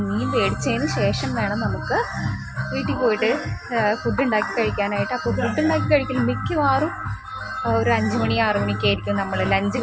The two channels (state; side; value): identical; both; correlation 1.00